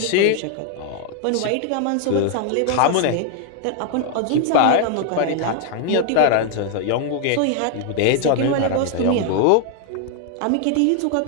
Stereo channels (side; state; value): both; different; correlation 0.00